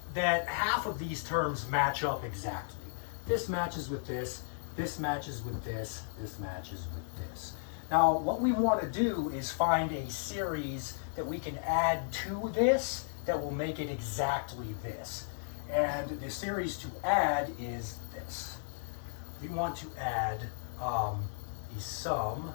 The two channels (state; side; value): silent; right; digital silence